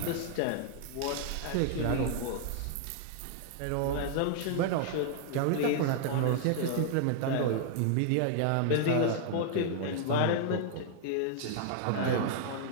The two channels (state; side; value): different; both; correlation -0.01